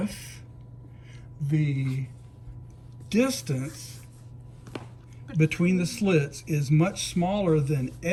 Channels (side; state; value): both; identical; correlation 1.00